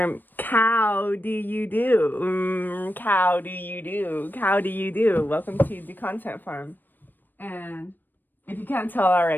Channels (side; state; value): right; late; 0.091 ms